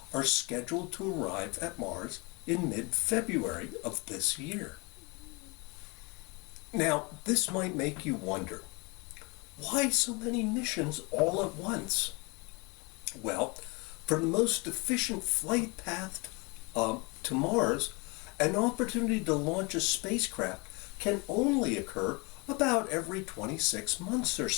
are scheduled to arrive at Mars in mid-February of this year. Now, this might make you wonder, why so many missions all at once? Well, for the most efficient flight path to Mars, an opportunity to launch a spacecraft can only occur about every 26 months or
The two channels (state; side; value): quieter; right; 28.7 dB